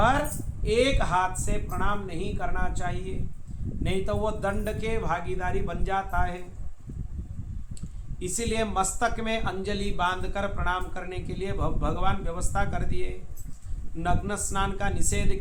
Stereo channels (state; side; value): identical; both; correlation 1.00